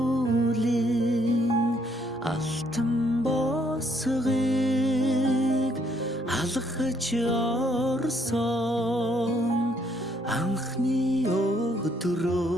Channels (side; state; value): both; normal; correlation 0.69